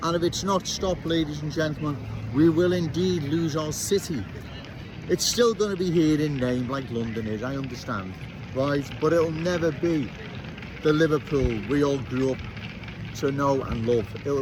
And if it's not stopped, ladies and gentlemen, we will indeed lose our city. It's still going to be here in name like London is, I understand, right? But it'll never be the Liverpool we all grew up to know and love.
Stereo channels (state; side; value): identical; both; correlation 1.00